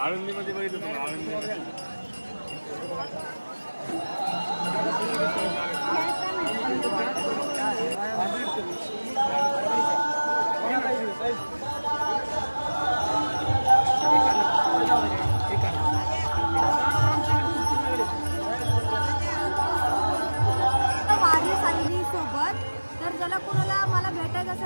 बघितलं वारी सांगली सोबत. तर ज्याला कोणाला मला भेटायचं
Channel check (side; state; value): both; inverted; correlation -1.00